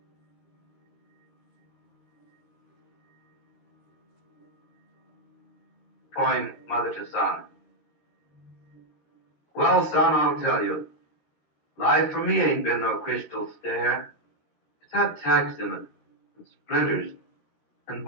Poem, Mother to Son. Well, son, I'll tell you, life for me ain't been no crystal stair. It's had tacks in it, and splinters, and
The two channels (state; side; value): late; right; 13 ms